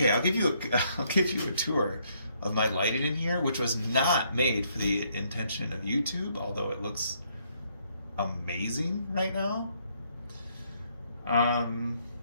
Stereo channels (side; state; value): both; inverted; correlation -0.71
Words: I'll give you a tour of my lighting in here, which was not made for the intention of YouTube, although it looks amazing right now.